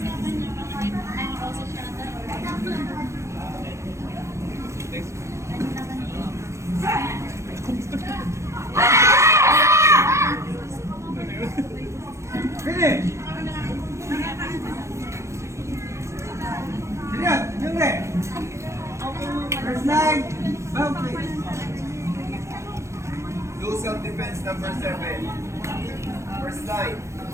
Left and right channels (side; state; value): left; late; 0.14 ms